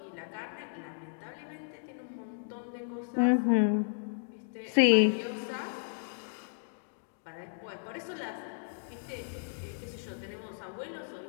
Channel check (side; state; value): right; silent; digital silence